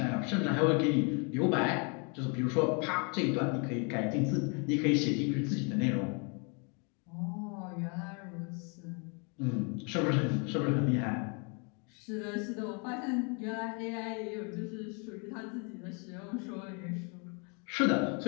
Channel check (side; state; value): right; quieter; 35.1 dB